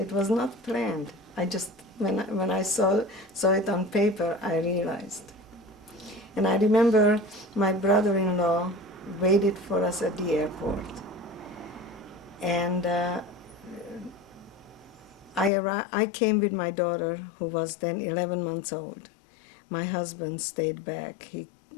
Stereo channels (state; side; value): drops out; right; at 15.5 s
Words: was not planned. I just, when I saw it on paper, I realized. And I remember my brother-in-law waited for us at the airport. And I came with my daughter, who was then 11 months old. My husband stayed back. He